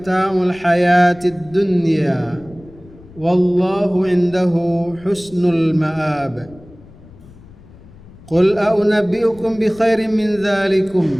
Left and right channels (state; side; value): noise; left; rumble, 22 dB below the sound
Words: الحياة الدنيا والله عنده حسن المآب. قل أنبئكم بخير من ذلكم